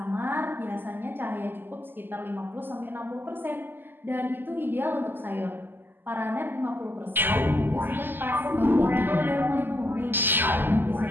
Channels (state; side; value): late; left; 0.094 ms